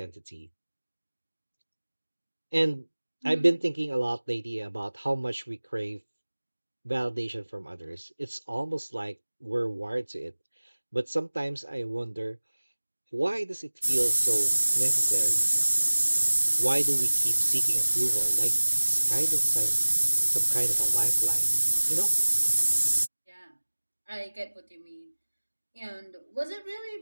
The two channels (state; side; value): inverted; both; correlation -1.00